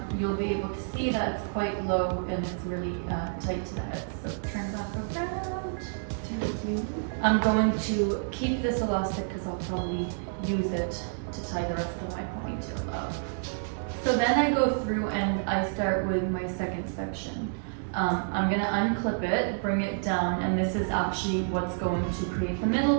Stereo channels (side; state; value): left; silent; digital silence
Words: you'll be able to see that it's quite low and it's really tight to the head. So turn back around. I'm going to keep this elastic because I'll probably use it to tie the rest of my ponytail up. So then I go through and I start with my second section. I'm going to unclip it, bring it down, and this is actually what's going to create the